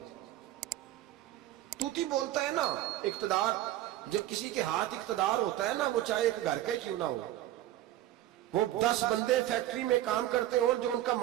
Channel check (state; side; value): quieter; left; 14.0 dB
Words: توتی بولتا ہے نا، اقتدار، جب کسی کے ہاتھ اقتدار ہوتا ہے نا، وہ چاہے ایک گھر کا کیوں نہ ہو، وہ 10 بندے فیکٹری میں کام کرتے ہو اور جو ان کا